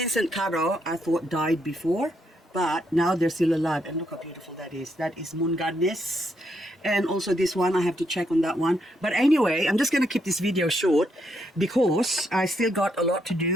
Caro I thought died before, but now they're still alive. And look how beautiful that is. That is Moon Goddess. And also this one, I have to check on that one. But anyway, I'm just going to keep this video short because I still got a lot to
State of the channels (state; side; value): normal; both; correlation 0.77